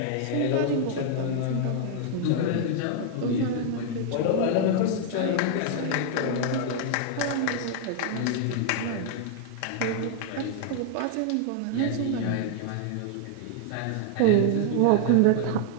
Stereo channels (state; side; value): different; both; correlation 0.00